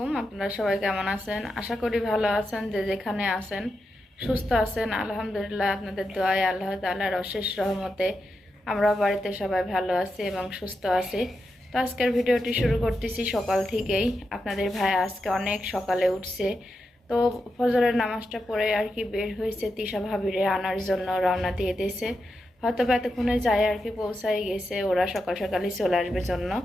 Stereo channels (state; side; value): normal; both; correlation 0.87